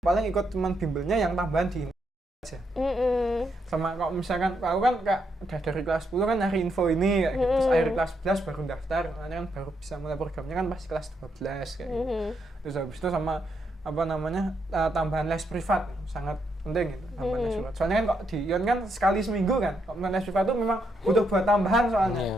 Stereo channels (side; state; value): both; normal; correlation 0.78